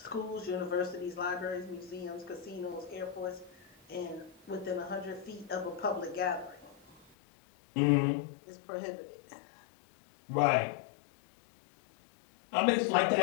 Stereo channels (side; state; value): right; drops out; at 7.1 s